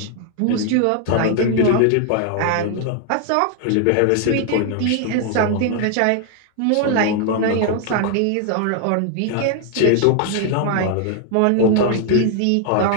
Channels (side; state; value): both; different; correlation 0.00